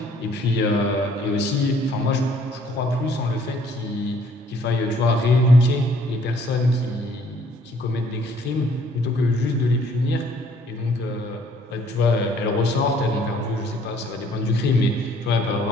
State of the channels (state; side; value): normal; both; correlation 0.61